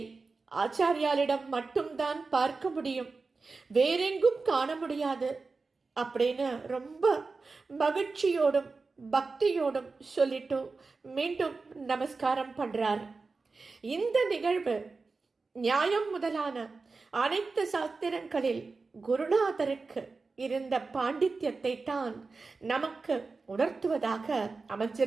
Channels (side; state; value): left; quieter; 4.1 dB